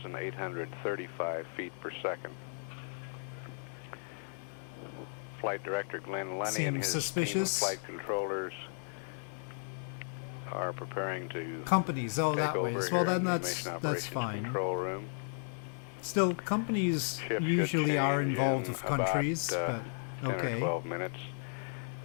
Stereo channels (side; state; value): right; silent; digital silence